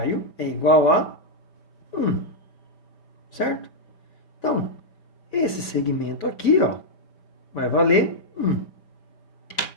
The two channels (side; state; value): right; late; 5.6 ms